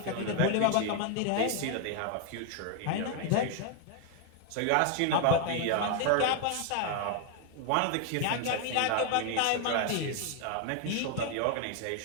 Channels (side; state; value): both; different; correlation 0.01